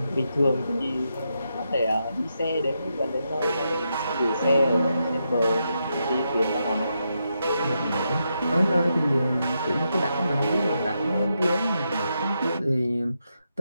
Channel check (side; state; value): both; inverted; correlation -0.83